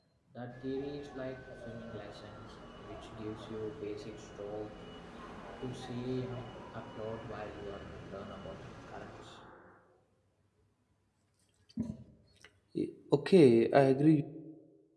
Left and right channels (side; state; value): both; identical; correlation 1.00